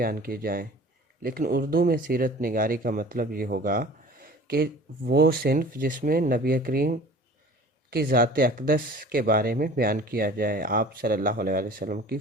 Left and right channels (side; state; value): both; normal; correlation 0.44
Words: کی جائیں، لیکن اردو میں سیرت نگاری کا مطلب یہ ہوگا کہ وہ صنف جس میں نبی کریم کی ذات اقدس کے بارے میں بیان کیا جائے، آپ صلی اللہ علیہ وسلم کی